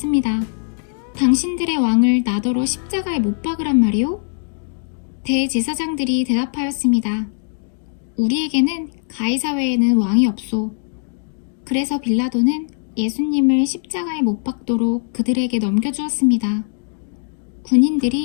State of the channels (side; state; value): right; silent; digital silence